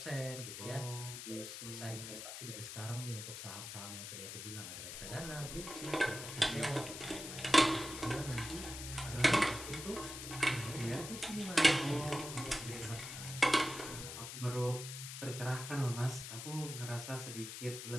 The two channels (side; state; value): left; noise; hiss, 8 dB below the sound